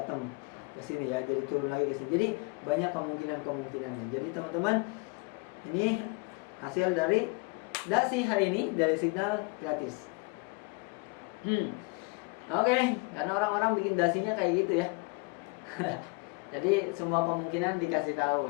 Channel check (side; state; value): right; quieter; 29.6 dB